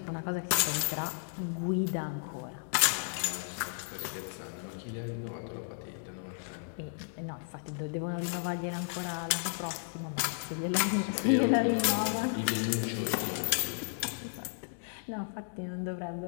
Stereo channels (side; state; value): right; silent; digital silence